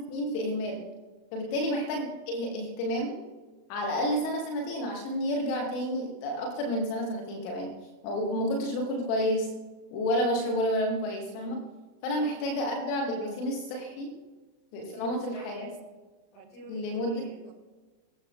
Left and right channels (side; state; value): right; late; 36 ms